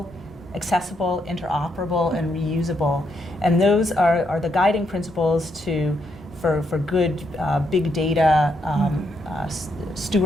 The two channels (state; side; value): normal; both; correlation 0.78